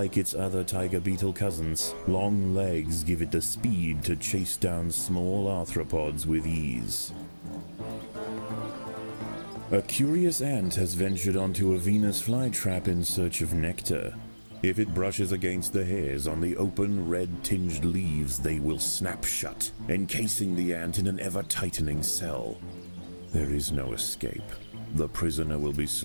its other tiger beetle cousins, long legs give it the speed to chase down small arthropods with ease. A curious ant has ventured onto a Venus flytrap in search of nectar. If it brushes against the hairs on the open, red-tinged leaves, they will snap shut, encasing the ant in an ever-tightening cell. There is no escape. The prisoner will be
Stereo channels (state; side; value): inverted; both; correlation -1.00